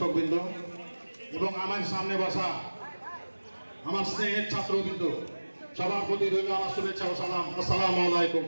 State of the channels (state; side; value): inverted; both; correlation -1.00